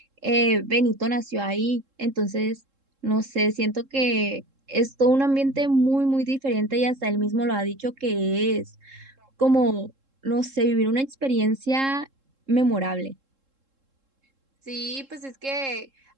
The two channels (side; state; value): left; late; 3.7 ms